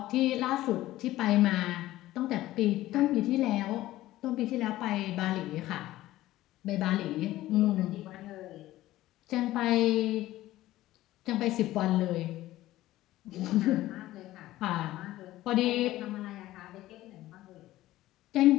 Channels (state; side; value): quieter; right; 15.7 dB